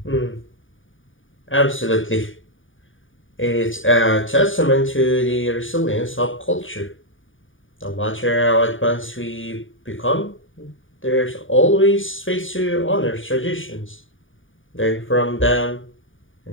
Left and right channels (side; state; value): right; late; 0.57 ms